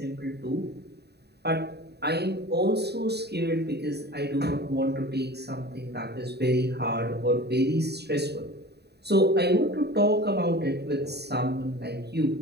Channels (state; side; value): late; left; 0.48 ms